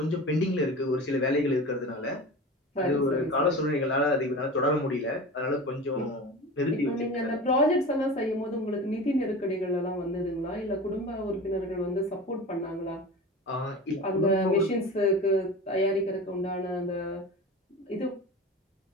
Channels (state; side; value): normal; both; correlation 0.32